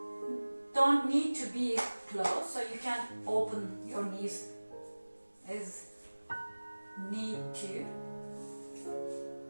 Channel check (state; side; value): inverted; both; correlation -1.00